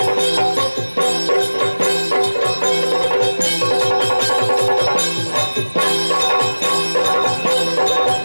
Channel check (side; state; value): both; inverted; correlation -1.00